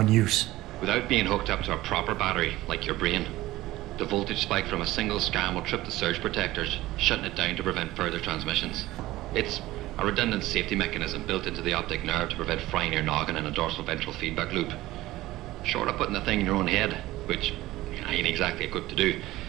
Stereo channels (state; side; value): quieter; left; 17.1 dB